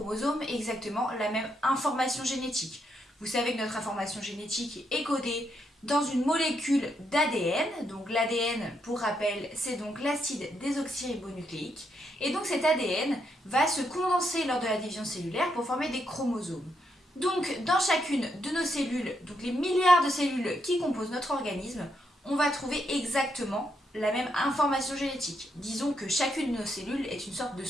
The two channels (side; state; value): both; normal; correlation 0.79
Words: exactement la même information génétique. Vous savez que notre information génétique est codée dans une molécule d'ADN. Donc l'ADN, pour rappel, c'est donc l'acide désoxyribonucléique. Et donc cet ADN va se condenser lors de la division cellulaire pour former des chromosomes. Donc dans chacune de nos cellules, donc les milliards de cellules qui composent notre organisme, on va trouver exactement la même information génétique. Disons que chacune de nos cellules est une sorte de